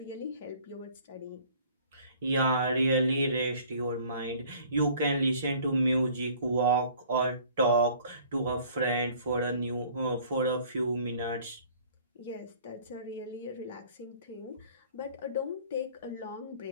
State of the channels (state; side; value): inverted; both; correlation -0.53